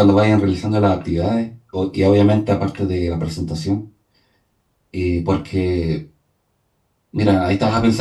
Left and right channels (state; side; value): identical; both; correlation 1.00